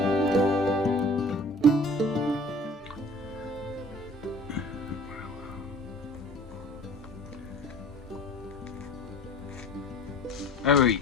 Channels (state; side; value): normal; both; correlation 0.47